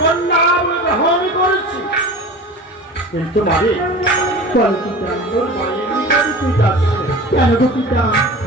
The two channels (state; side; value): normal; both; correlation 0.36